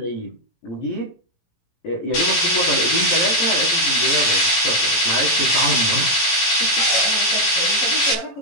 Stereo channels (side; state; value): right; late; 18 ms